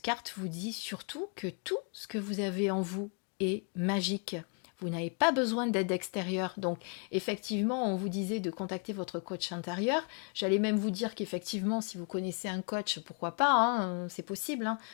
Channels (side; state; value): right; quieter; 38.0 dB